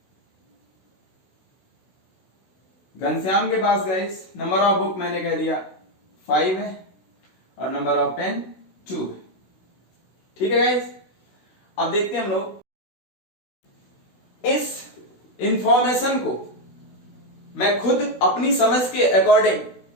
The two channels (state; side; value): late; right; 16 ms